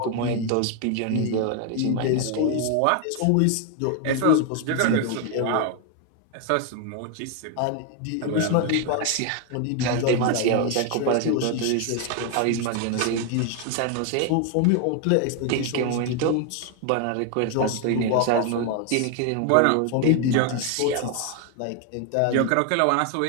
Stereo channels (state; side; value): different; both; correlation 0.01